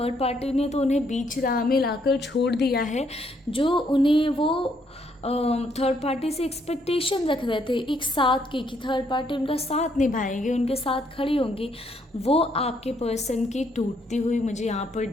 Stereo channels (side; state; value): both; normal; correlation 0.71